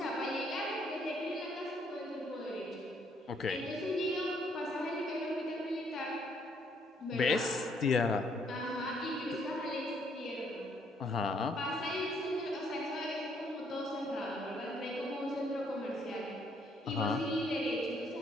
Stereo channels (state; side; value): normal; both; correlation 0.68